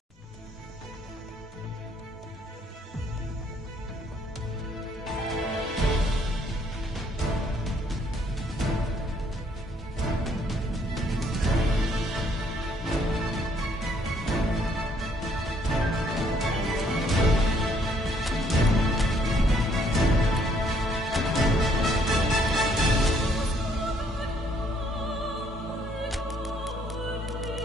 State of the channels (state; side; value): normal; both; correlation 0.66